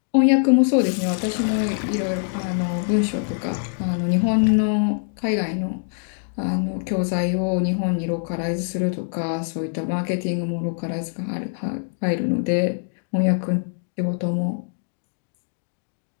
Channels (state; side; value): silent; right; digital silence